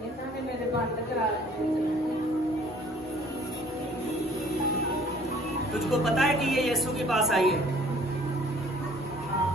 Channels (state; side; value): normal; both; correlation 0.55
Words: इन्होंने मेरे बंद करा। तुझको पता है कि ये यीशु के पास आई है?